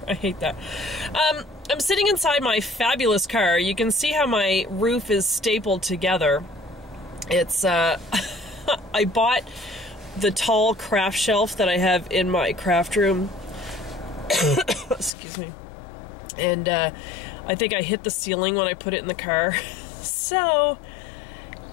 I hate that. I'm sitting inside my fabulous car. You can see how my roof is stapled together. It's, I bought the tall craft shelf that I have in my craft room. Excuse me. And I think I hit the ceiling when I put it in the car. So,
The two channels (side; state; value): right; drops out; at 15.1 s